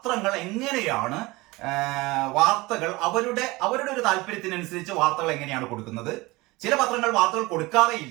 എങ്ങനെയാണ് വാർത്തകൾ അവരുടെ ഒരു താല്പര്യത്തിനനുസരിച്ച് വാർത്തകൾ എങ്ങനെയാണ് കൊടുക്കുന്നത്. ചില പത്രങ്ങൾ വാർത്തകൾ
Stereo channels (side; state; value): left; quieter; 22.0 dB